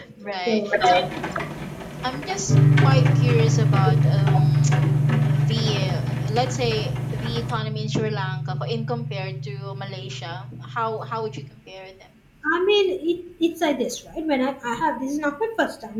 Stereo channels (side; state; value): both; identical; correlation 1.00